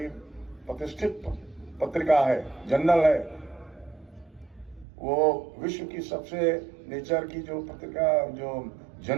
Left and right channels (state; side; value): drops out; left; at 4.9 s